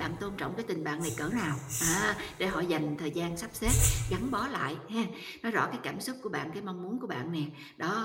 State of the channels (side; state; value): both; identical; correlation 1.00